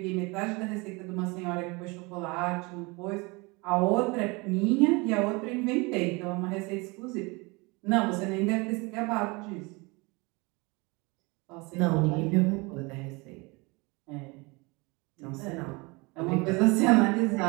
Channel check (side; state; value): left; quieter; 26.6 dB